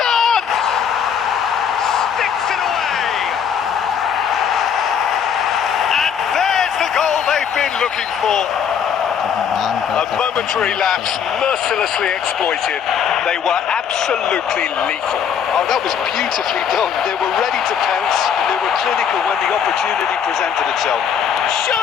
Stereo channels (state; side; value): quieter; right; 7.7 dB